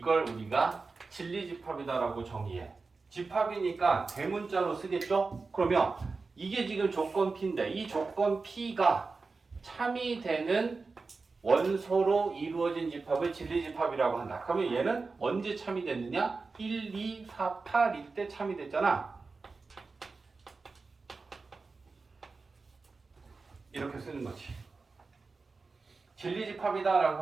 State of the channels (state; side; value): quieter; left; 4.1 dB